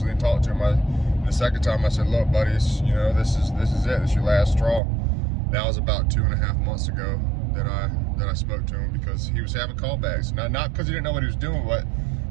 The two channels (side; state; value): left; drops out; at 4.8 s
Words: and talk to him. The second time I said, look, buddy, you know, this is it. This is your last straw. That was about 2.5 months ago that I spoke to him, because he was having callbacks. Not because he didn't know what he was doing, but